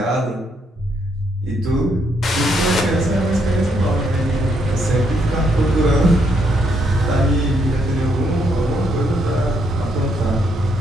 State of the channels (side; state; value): both; normal; correlation 0.74